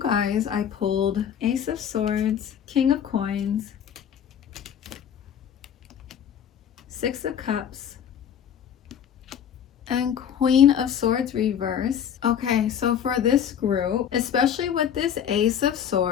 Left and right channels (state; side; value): quieter; right; 8.8 dB